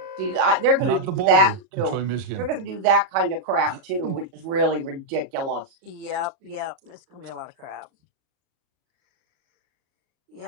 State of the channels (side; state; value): left; late; 37 ms